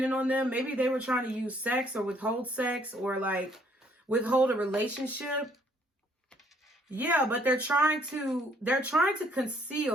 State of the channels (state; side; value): normal; both; correlation 0.64